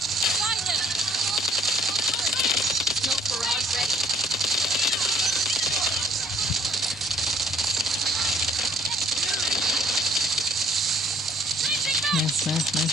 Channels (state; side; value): normal; both; correlation 0.60